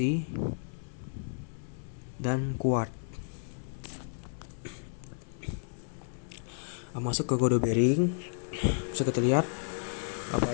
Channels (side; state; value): right; silent; 56 dB below the other